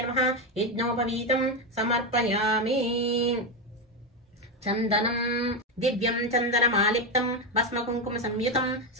నమః. యజ్ఞోపవీతం సమర్పయామి. చందనం దివ్యం చందనమాలిప్తం భస్మకుంకుమ సంయుతం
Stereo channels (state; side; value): normal; both; correlation 0.10